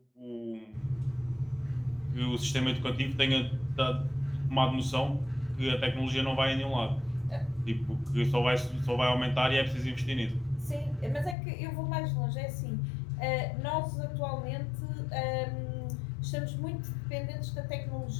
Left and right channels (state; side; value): drops out; right; at 11.4 s